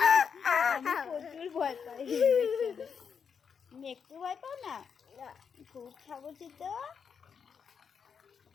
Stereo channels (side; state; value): right; quieter; 6.6 dB